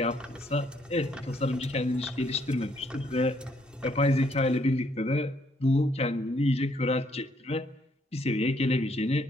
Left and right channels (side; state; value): both; normal; correlation 0.69